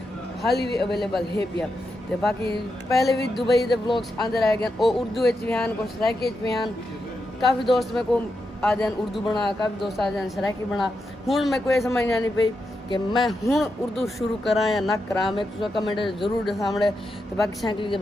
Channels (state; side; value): normal; both; correlation 0.86